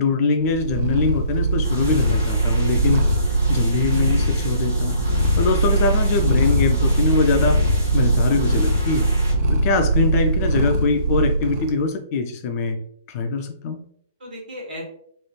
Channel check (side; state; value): both; inverted; correlation -0.59